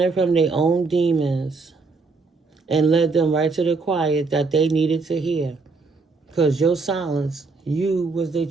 from their own demons and led them right to the quiet that they needed to hear. Because your silence, you was their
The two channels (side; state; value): left; quieter; 4.1 dB